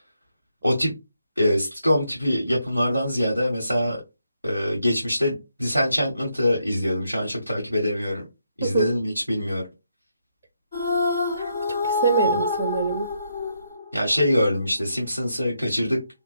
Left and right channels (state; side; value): inverted; both; correlation -0.79